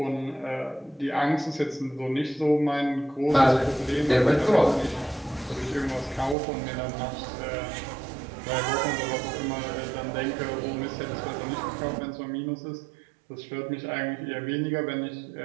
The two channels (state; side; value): drops out; left; at 6.4 s